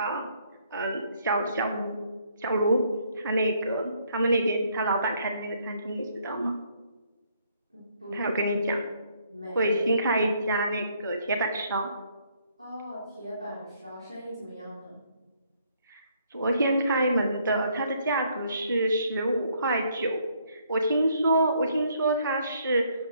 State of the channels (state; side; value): inverted; both; correlation -0.68